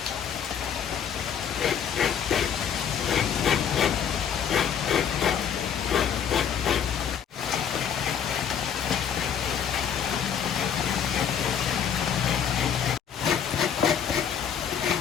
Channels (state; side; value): quieter; right; 8.1 dB